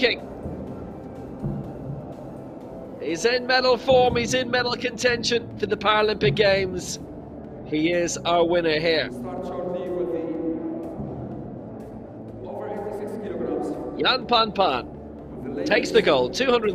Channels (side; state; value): both; identical; correlation 1.00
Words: He's in medal form, he's in medal contention for the Paralympic Games. He is our winner here. Jan Pan Pan takes the gold,